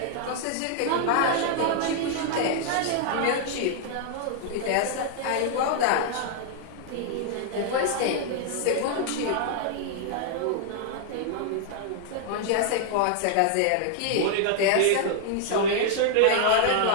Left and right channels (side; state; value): both; different; correlation -0.01